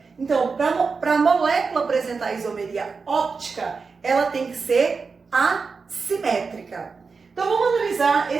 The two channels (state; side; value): quieter; left; 4.8 dB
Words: Então, para a molécula apresentar isomeria óptica, ela tem que ser assimétrica. Então, vamos analisar